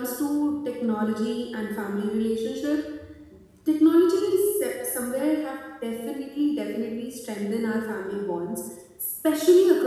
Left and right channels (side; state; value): both; identical; correlation 1.00